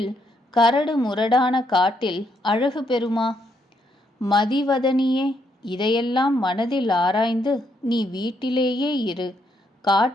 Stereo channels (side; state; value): both; normal; correlation 0.75